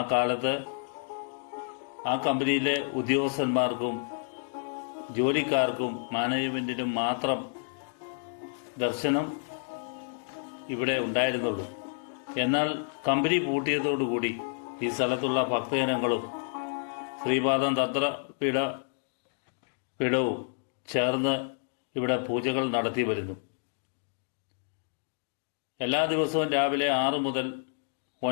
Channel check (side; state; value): right; silent; digital silence